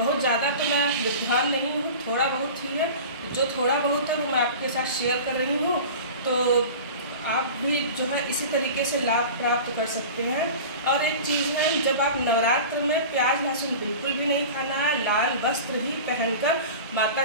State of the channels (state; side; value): inverted; both; correlation -0.35